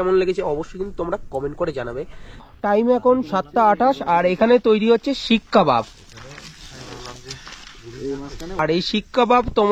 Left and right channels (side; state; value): both; identical; correlation 1.00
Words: লেগেছে অবশ্যই কিন্তু তোমরা কমেন্ট করে জানাবে। টাইম এখন 7টা 28, আর এখানে তৈরি হচ্ছে শিক কাবাব। আর এই শিক কাবাব